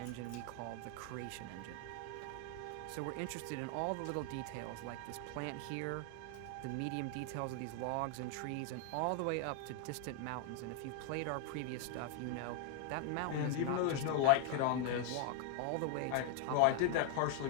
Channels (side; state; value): both; different; correlation 0.01